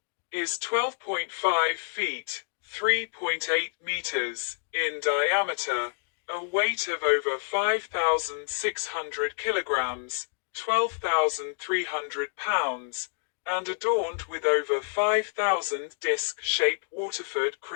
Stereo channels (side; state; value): right; silent; digital silence